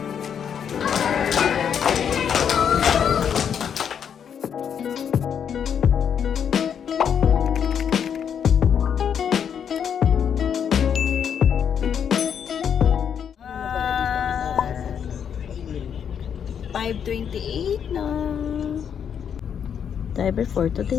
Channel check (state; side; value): quieter; right; 8.0 dB